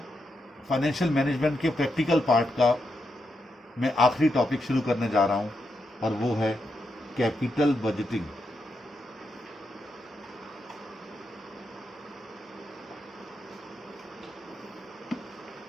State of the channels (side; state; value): both; normal; correlation 0.84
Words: financial management के प्रैक्टिकल पार्ट का मैं आखिरी टॉपिक शुरू करने जा रहा हूँ और वो है कैपिटल बजटिंग।